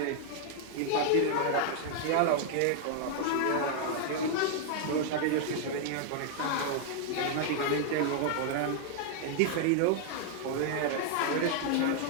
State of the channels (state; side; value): different; both; correlation 0.00